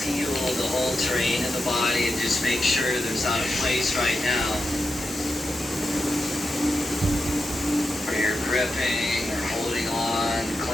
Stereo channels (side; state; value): both; normal; correlation 0.88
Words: the whole terrain of the body, and just make sure there's not a place right now where you're gripping or holding on,